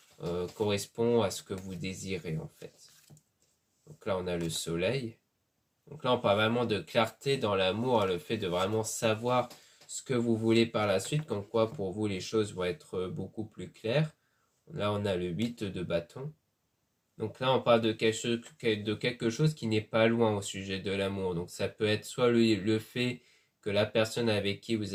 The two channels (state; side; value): identical; both; correlation 1.00